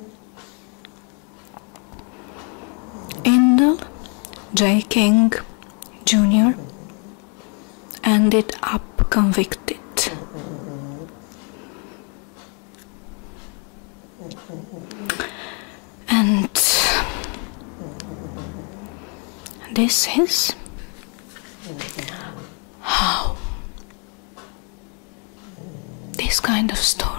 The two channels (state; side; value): quieter; right; 37.5 dB